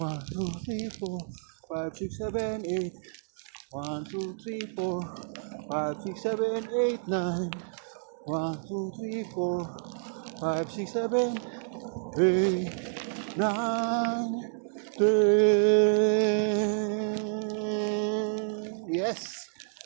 2, 3, 4, 5, 6, 7, 8, 1, 2, 3, 4, 5, 6, 7, 8, 9, 1, 2, 3, 4, 5, 6, 7, 8, 9, 10. Yes!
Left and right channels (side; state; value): left; silent; digital silence